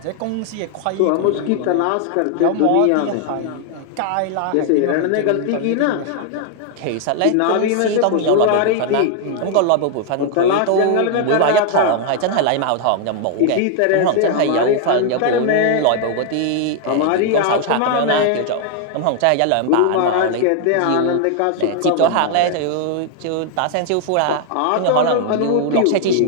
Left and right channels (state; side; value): different; both; correlation 0.00